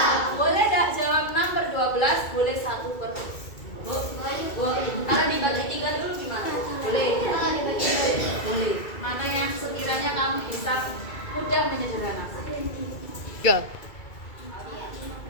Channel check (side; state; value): right; late; 2.3 ms